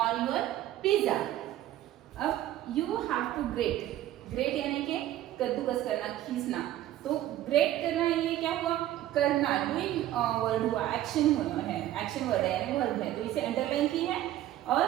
on your pizza. अब you have to grate, great यानी कि कद्दूकस करना, खींचना, तो ग्रेट करना ये क्या हुआ, करना, डूइंग वर्ड हुआ, एक्शन हुआ है, एक्शन वर्ड है यानी वर्ब है, तो इसे अंडरलाइन की है। और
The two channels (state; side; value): quieter; left; 13.4 dB